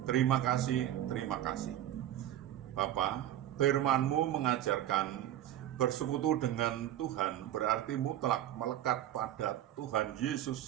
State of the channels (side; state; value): left; quieter; 12.2 dB